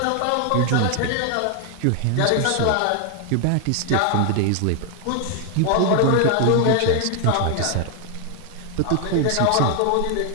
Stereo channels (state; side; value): different; both; correlation 0.00